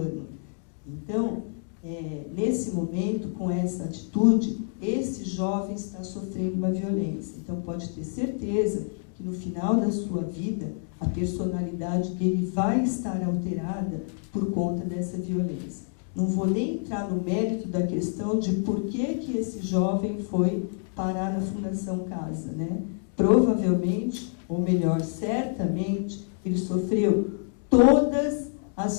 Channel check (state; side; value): silent; right; 60 dB below the other